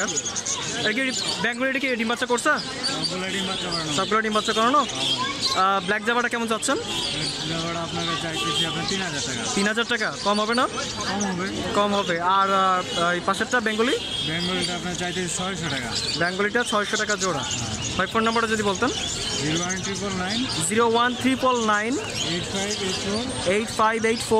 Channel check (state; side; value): identical; both; correlation 1.00